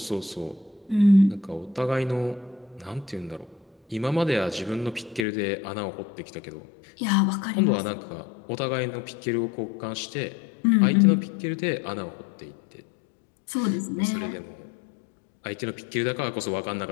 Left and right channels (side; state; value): right; drops out; at 5.2 s